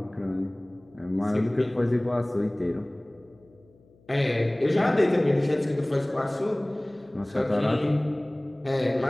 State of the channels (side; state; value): left; noise; hum, 30 dB below the sound